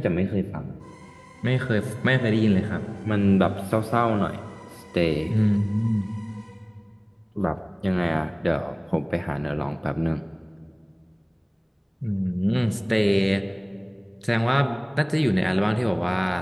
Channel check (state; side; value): identical; both; correlation 1.00